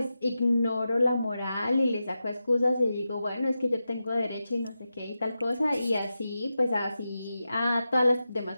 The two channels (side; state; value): both; inverted; correlation -0.91